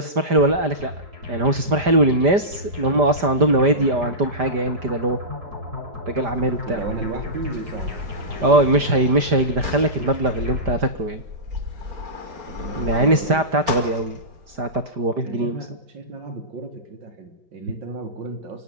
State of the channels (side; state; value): left; late; 5.0 ms